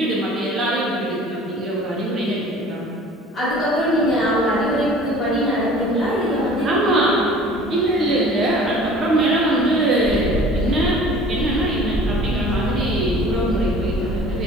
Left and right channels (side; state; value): both; normal; correlation 0.47